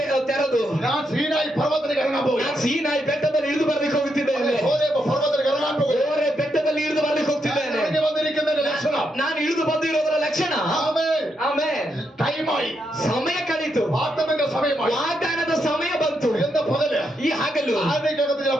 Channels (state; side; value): normal; both; correlation 0.81